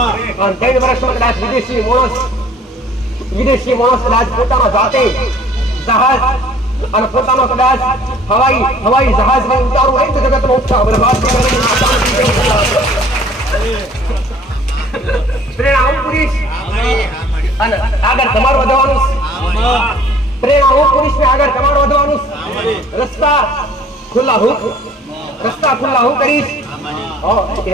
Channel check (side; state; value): both; normal; correlation 0.54